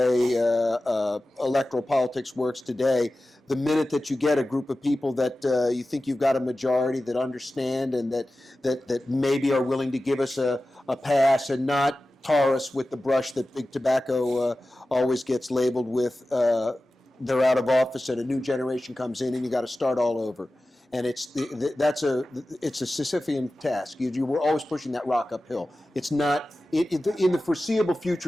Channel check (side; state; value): both; normal; correlation 0.95